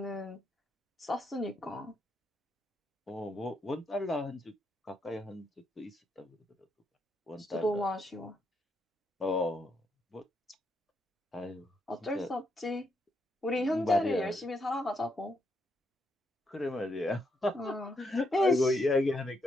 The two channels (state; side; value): normal; both; correlation 0.78